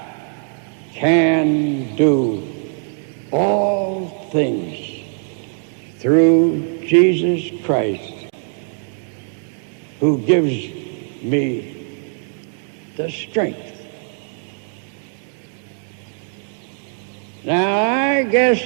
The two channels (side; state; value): left; silent; 59 dB below the other